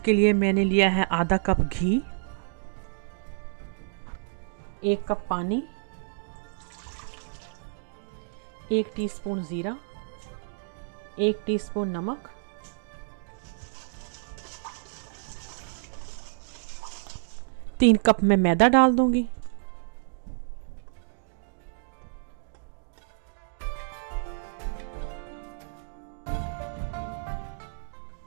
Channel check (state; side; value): silent; left; digital silence